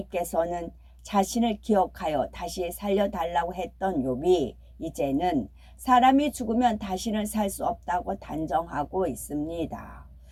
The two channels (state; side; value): identical; both; correlation 1.00